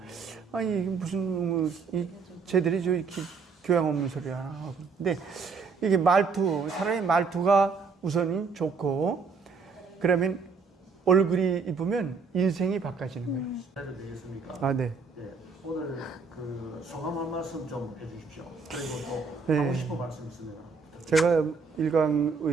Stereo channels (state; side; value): quieter; left; 4.9 dB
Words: 아니 이게 무슨 쟤들이 저 이렇게 교양 없는 소리 하나 하고 근데 이게 사람의 말투가 우선이 좋고 그러면 얼굴이 이쁘면 인생이 바꿔지는 거예요. 해도 되겠습니까? 아 네. 네. 오늘 그 소감 한 말씀 좀 해주십시오. 그리고 또 네. 하고 싶은 말씀 있으면 제가 일강